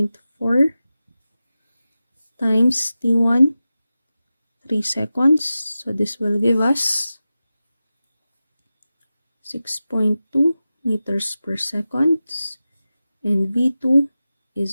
times T1, 3 seconds. So this will give us 6.2 meters per second. And V2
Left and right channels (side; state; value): both; inverted; correlation -0.94